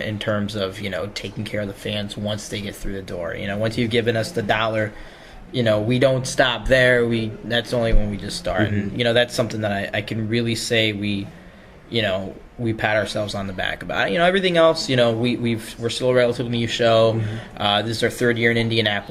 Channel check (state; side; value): identical; both; correlation 1.00